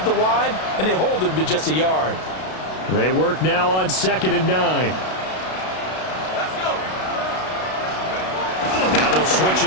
the line, and they hold him to just a yard. They work now on 2nd and 9. Now they'll switch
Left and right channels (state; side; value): late; right; 32 ms